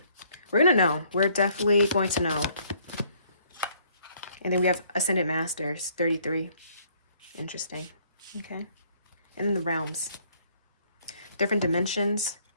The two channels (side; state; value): both; inverted; correlation -0.64